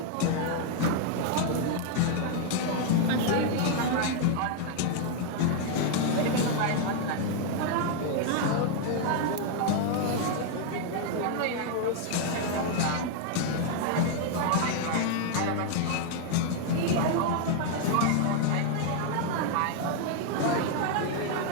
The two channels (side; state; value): both; different; correlation 0.00